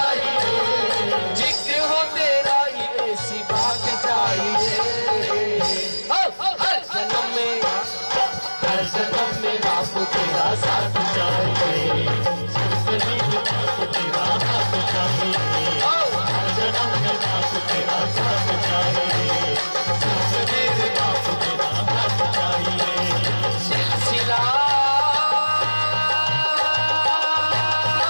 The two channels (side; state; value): both; inverted; correlation -1.00